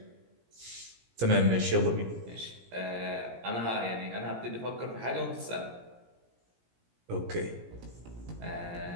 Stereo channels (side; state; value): left; late; 17 ms